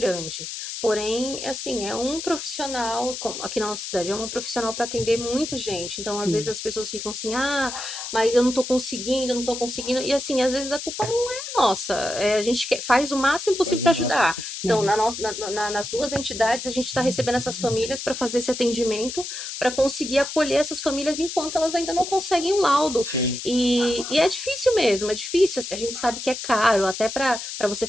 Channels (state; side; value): noise; left; hiss, 7 dB below the sound